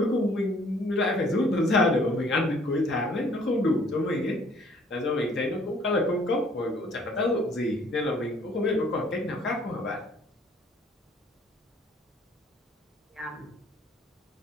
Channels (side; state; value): both; normal; correlation 0.58